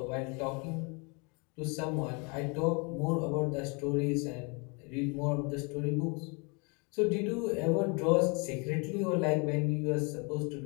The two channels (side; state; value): right; quieter; 32.2 dB